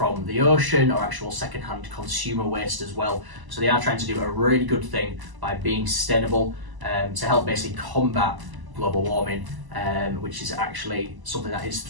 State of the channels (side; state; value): left; late; 1.0 ms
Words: the ocean or actual second-hand consumer waste as well. So they are trying to do a really good thing by being sustainable to help basically combat global warming, which is actually something that is